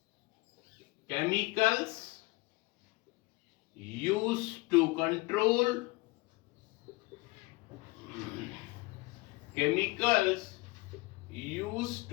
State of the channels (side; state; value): right; quieter; 23.4 dB